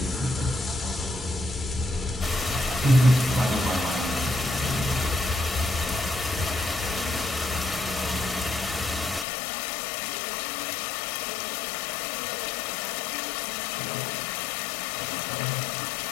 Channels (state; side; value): drops out; right; at 9.2 s